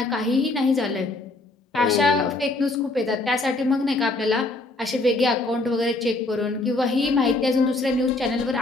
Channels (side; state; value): right; quieter; 3.1 dB